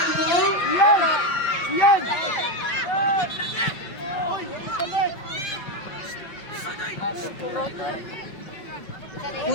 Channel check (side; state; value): right; late; 5.4 ms